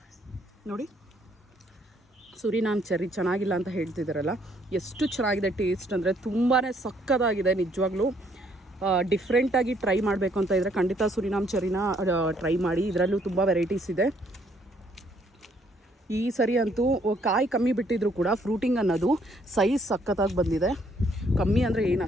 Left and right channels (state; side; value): normal; both; correlation 0.67